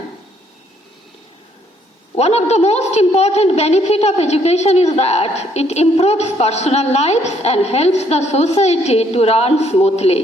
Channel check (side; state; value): both; normal; correlation 0.68